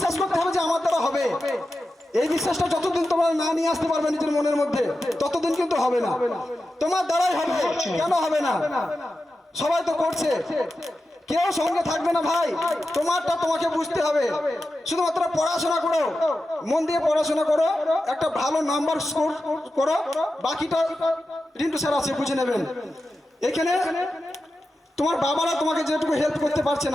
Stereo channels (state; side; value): normal; both; correlation 0.92